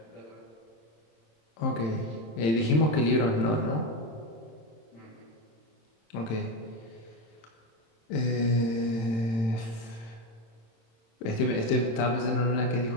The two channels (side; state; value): right; late; 27 ms